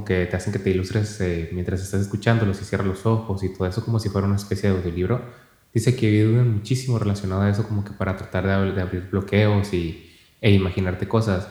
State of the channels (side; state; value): both; identical; correlation 1.00